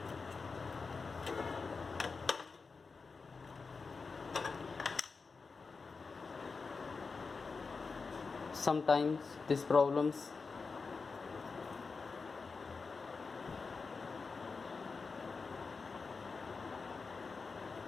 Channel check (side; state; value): right; quieter; 4.6 dB